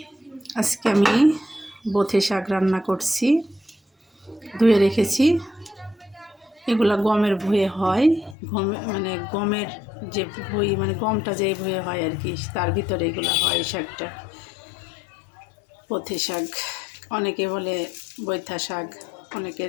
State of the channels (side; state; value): right; drops out; at 8.3 s